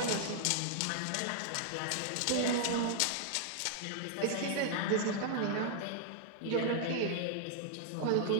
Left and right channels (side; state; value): both; different; correlation -0.01